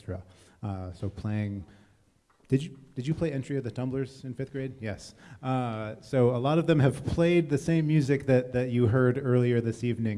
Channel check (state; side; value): identical; both; correlation 1.00